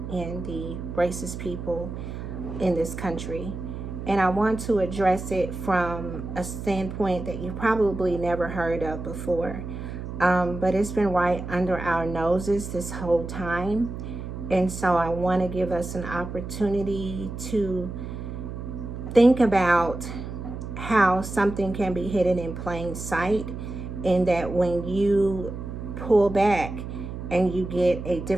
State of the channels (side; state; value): right; noise; hum, 8 dB below the sound